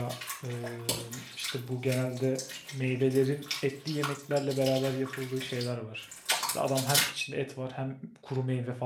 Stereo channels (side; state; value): both; identical; correlation 1.00